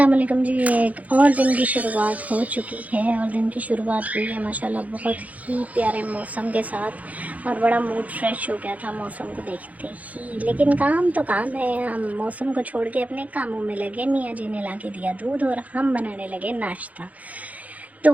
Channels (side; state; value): left; late; 0.072 ms